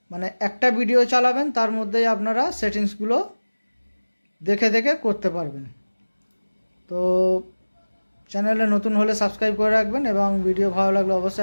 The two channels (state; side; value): inverted; both; correlation -1.00